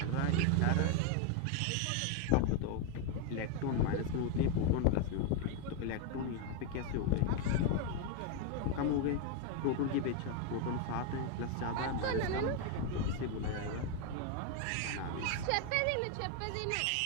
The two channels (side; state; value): both; different; correlation 0.01